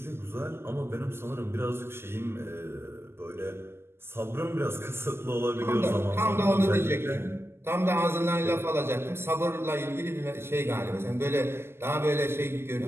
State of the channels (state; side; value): late; left; 0.12 ms